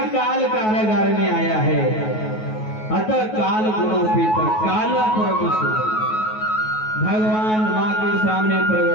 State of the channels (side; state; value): right; late; 9.3 ms